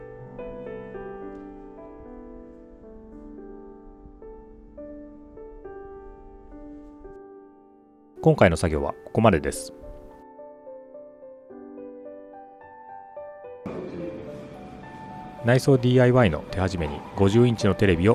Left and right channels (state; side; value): identical; both; correlation 1.00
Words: 今回の作業はここまでです。内装 DIY の手始めに50インチのテレビを